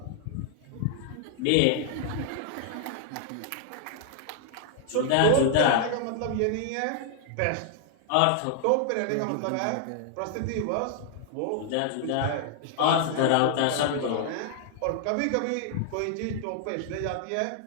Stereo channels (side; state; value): both; different; correlation -0.01